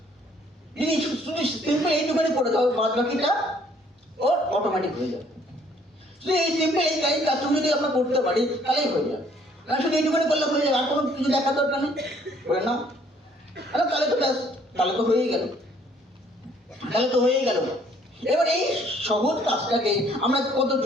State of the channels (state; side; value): normal; both; correlation 0.62